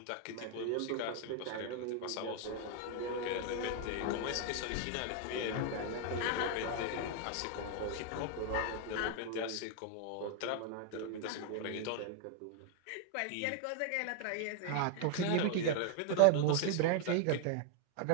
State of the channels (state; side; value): different; both; correlation 0.00